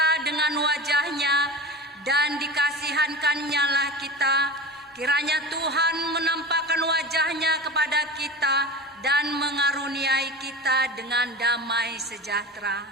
dengan wajah-Nya dan dikasihankan-Nya lah kita. Kiranya Tuhan menampakkan wajah-Nya kepada kita dan mengaruniai kita dengan damai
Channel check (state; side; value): normal; both; correlation 0.32